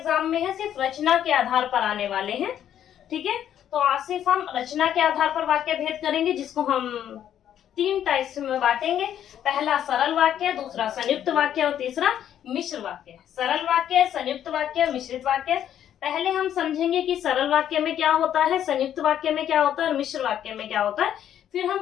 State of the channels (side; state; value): right; quieter; 10.3 dB